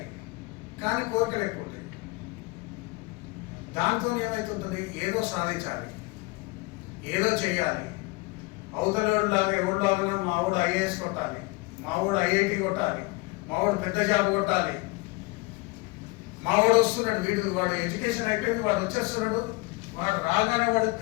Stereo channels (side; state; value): right; quieter; 25.1 dB